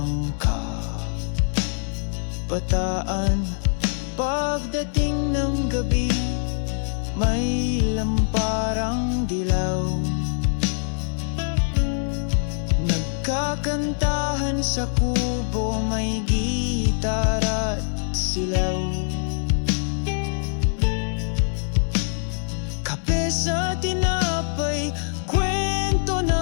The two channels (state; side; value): silent; right; digital silence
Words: kabataan. Pagdating ng gabi, may lamparang dilaw. Nagkakantahan sa kubo, may gitara at silaw. Kape sa tinapay, kwento